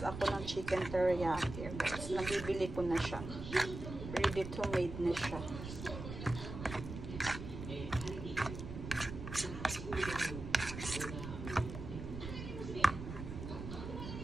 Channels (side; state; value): right; noise; rumble, 8 dB below the sound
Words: ako ng chicken teriyaki. Guys, nabibili ko na siya. Ready to made na siya.